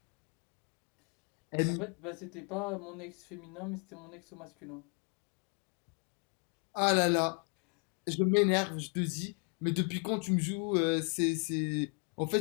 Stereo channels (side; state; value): right; quieter; 38.6 dB